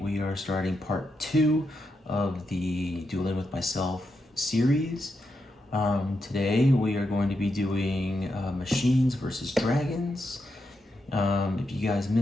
are starting part 2 of the Dueling with Myself series. Today we are going to be doing machines versus dragons. If you guys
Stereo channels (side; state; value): both; normal; correlation 0.84